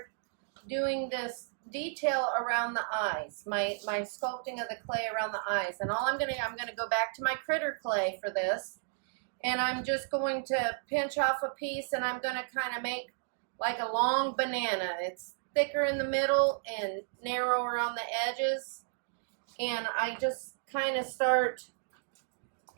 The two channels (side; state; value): left; silent; digital silence